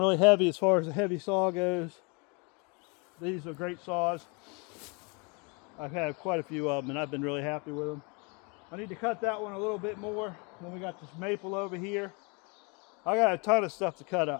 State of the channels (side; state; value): right; quieter; 31.6 dB